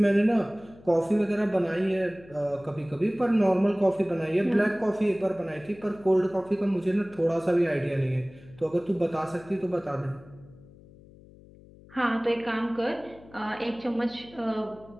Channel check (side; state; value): left; noise; hum, 23 dB below the sound